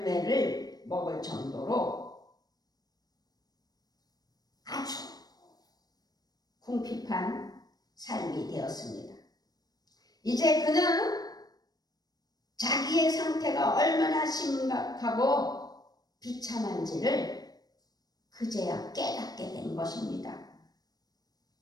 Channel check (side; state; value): right; late; 0.19 ms